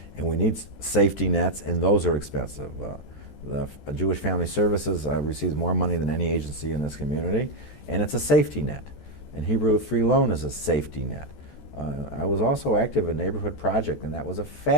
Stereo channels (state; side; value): late; right; 14 ms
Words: And we need safety nets, and those are expensive. The Jewish Family Services receives more money than any agency in this community, and it's a safety net. And Hebrew Free Loan is a safety net. I was also active in Neighborhood Project, and that was a